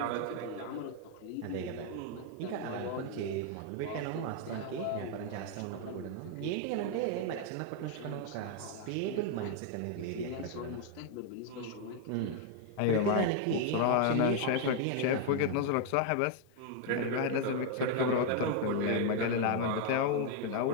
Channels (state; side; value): different; both; correlation 0.00